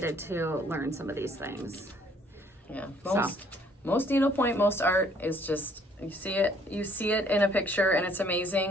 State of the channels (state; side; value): normal; both; correlation 0.62